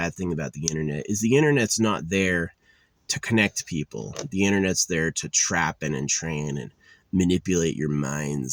thing about the internet is the internet's not there to connect people. The internet's there to trap and entrain and manipulate your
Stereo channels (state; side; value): identical; both; correlation 1.00